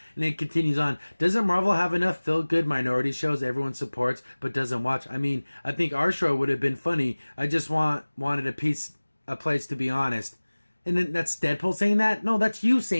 and it continues on. Doesn't Marvel have enough feel-good minority shows everyone supports but doesn't watch? I mean, I think our show would have been funny. I just wanted a place to be honest. And then that's Deadpool saying that? No, that's you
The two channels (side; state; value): both; inverted; correlation -1.00